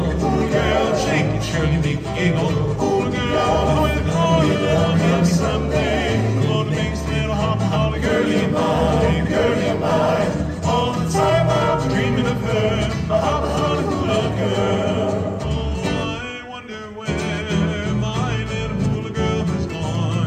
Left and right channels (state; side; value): identical; both; correlation 1.00